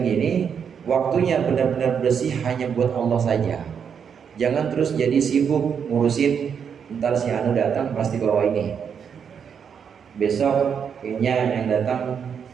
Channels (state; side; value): quieter; left; 7.2 dB